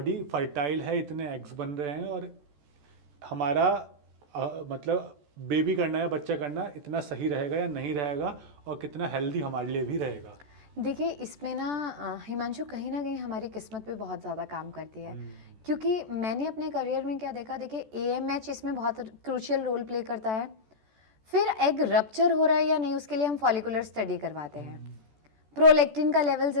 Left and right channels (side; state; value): left; late; 14 ms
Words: फर्टाइल है, इतने एग्स बन रहे हैं और हमारा मतलब बेबी करना या बच्चा करना इतना सही रहेगा या नहीं रहेगा, और कितना हेल्दी हमारे लिए भी रहेगा? देखिए इसमें ना हिमांशु, कहीं ना कहीं हमारी किस्मत पे बहुत ज़्यादा काम करती है, क्योंकि मैंने अपने करियर में क्या देखा, देखिए AMH इसमें बहुत क्रूशियल रोल प्ले करता है, फिर एग रप्चर हो रहा है या नहीं उसके लिए हम फॉलिकुलर स्टडी करवाते हैं, प्रोलेक्टिन का लेवल